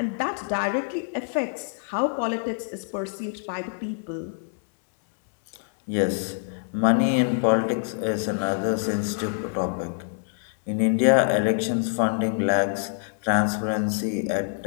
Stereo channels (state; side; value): silent; right; digital silence